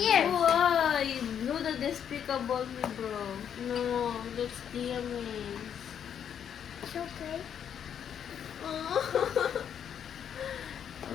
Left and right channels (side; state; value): right; quieter; 8.6 dB